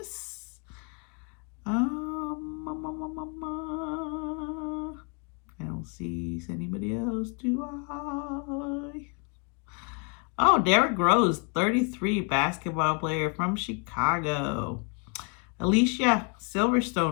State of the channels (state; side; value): quieter; right; 36.2 dB